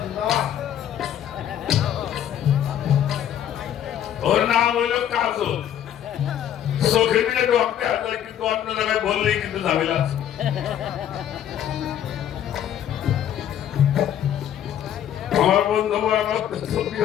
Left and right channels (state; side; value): quieter; right; 10.3 dB